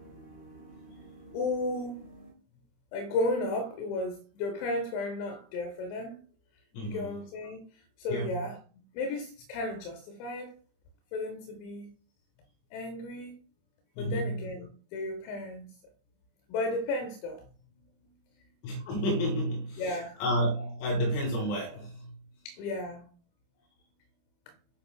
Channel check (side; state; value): right; late; 25 ms